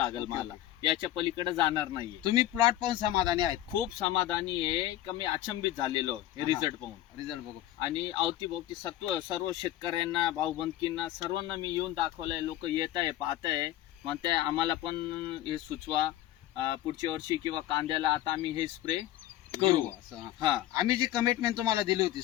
मला। याच्या पलीकडे जाणार नाहीये। तुम्ही प्लॉट पाहून समाधानी आहेत? खूप समाधानी आहे का मी अचंबित झालेलो हे रिझल्ट पाहून। रिझल्ट बघू आणि अवतीभोवती सर्व शेतकऱ्यांना, भाऊबंदकींना सर्वांना मी येऊन दाखवलंय। लोक येत आहे, पाहत आहे, म्हणते आम्हाला पण हे सुचवा, पुढच्या वर्षी किंवा कांद्याला आता आम्ही हे स्प्रे करू। आम्ही जी कमिटमेंट तुम्हाला दिली होती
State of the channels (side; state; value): right; quieter; 13.8 dB